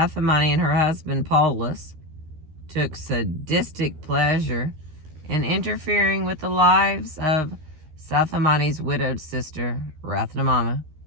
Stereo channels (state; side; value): late; left; 13 ms